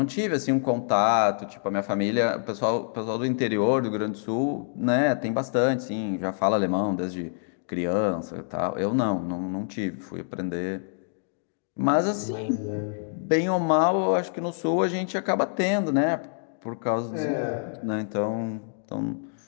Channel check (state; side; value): silent; right; digital silence